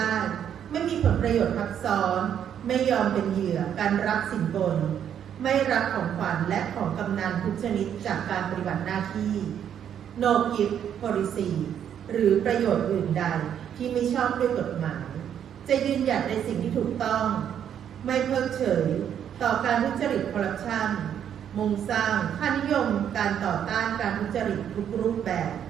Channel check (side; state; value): left; quieter; 9.2 dB